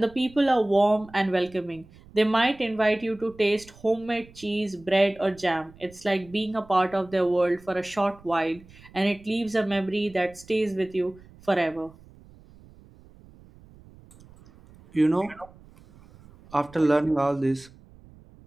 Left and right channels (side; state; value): right; noise; rumble, 24 dB below the sound